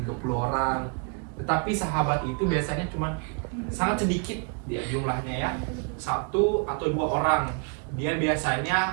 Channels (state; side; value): quieter; left; 37.0 dB